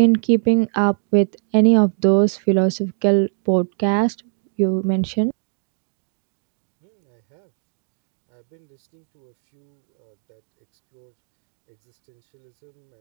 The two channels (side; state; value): left; silent; 64 dB below the other